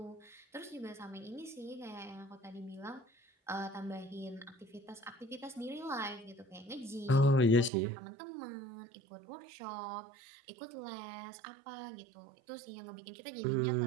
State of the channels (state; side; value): drops out; left; at 7.7 s